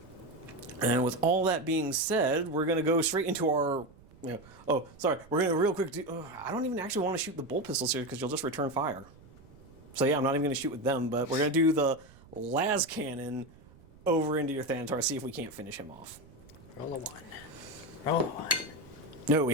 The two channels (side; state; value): right; noise; rumble, 24 dB below the sound